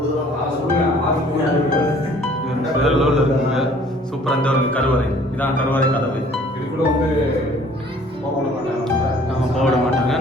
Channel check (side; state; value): both; normal; correlation 0.55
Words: வேற லெவலில் இருக்குங்க. சூப்பராக இந்த ஒரு கருவறை. இதான் கருவறை கதவு. இதுக்குள்ள வந்து போட மாட்டாங்க.